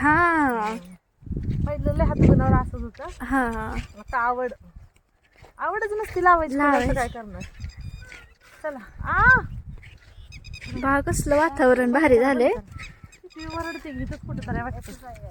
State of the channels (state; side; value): identical; both; correlation 1.00